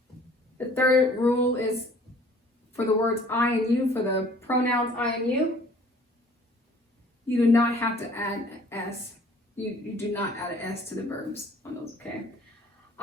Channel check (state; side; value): normal; both; correlation 0.54